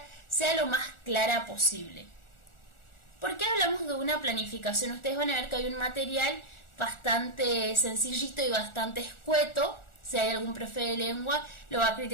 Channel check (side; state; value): right; late; 1.4 ms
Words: sea lo más clara posible. ¿Por qué hablamos de una planificación? Ustedes van a ver que hay un material bastante sencillito y bastante escueto. Si hay algún profe de lengua, lo va a